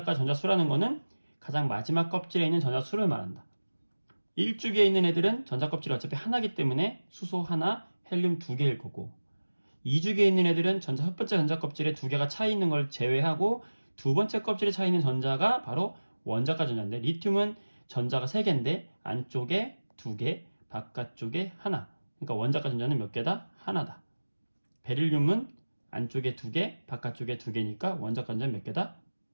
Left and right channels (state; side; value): inverted; both; correlation -1.00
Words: 전자수라는 거는 가장 마지막 껍질에 있는 전자수를 말한다. 1주기에 있는 애들은 전자 껍질이 어차피 하나이기 때문에 수소 하나, 헬륨 2개일 거고, 2주기에 있는 애들은 첫 번째 전자 껍질에 2개가 차이 있는 걸 제외하고 두 번째 껍질에 차이 있는 전자가 바로 원자과 전자인데, 리튬은 전자가 3개인데 안쪽에 2개, 바깥쪽에 하나. 그러니까 원자과 전자는 몇 개다? 하나다. 베릴륨은 안쪽에 2개, 바깥쪽에 2개니까 원자과 전자는 몇 개다?